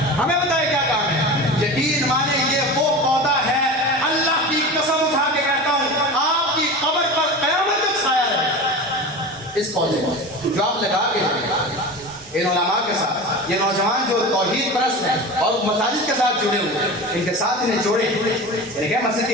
ہمیں بتائے کیا کام ہے۔ یقین مانے یہ وہ پودا ہے، اللہ کی قسم اٹھا کے کہتا ہوں آپ کی قبر پر قیامت تک سایہ رہے اس پودے کو جو آپ لگا کے ان علماء کے ساتھ۔ یہ نوجوان جو توحید پرست ہیں اور مساجد کے ساتھ جڑے ہوئے ہیں، ان کے ساتھ انہیں جوڑیں، انہیں مسجد کی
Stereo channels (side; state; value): both; normal; correlation 0.30